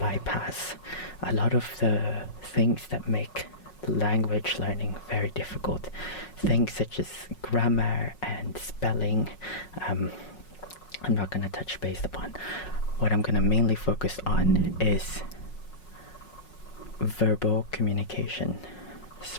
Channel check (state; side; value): late; right; 5.4 ms